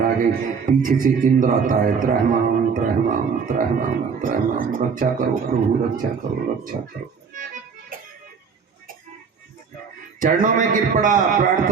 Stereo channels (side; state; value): left; quieter; 5.8 dB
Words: आ गए। पीछे से इंद्र आता है, त्रहमाम त्रहमाम त्रहमाम त्रहमाम, रक्षा करो प्रभु, रक्षा करो, रक्षा करो। चरणों में गिर पड़ा,